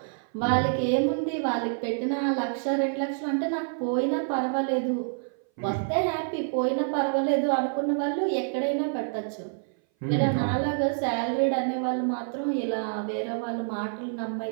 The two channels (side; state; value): left; silent; 58 dB below the other